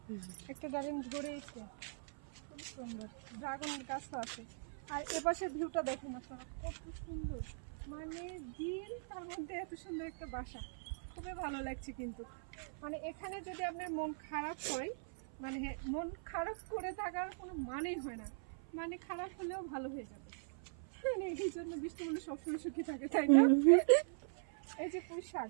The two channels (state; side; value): silent; left; 50 dB below the other